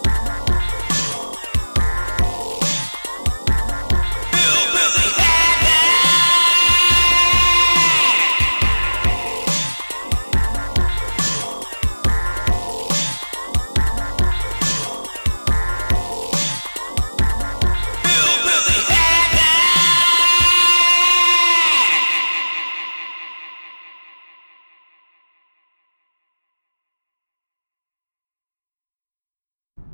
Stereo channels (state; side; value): inverted; both; correlation -1.00